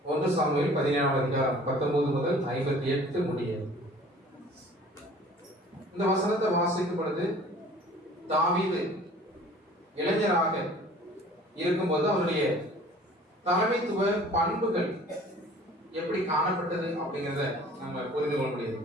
1 சாமுவேல் 17 முதல் 58 முடிய. இந்த வசனத்தை வாசிக்கும் பொழுது தாவீது இளைஞராக இருக்கும்போது அவருடைய தலைமைத்துவ பண்புகள் எப்படி காணப்பட்டது அப்படிங்கிறத நம்ம புரிந்து கொள்ள முடியுது.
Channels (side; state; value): both; normal; correlation 0.49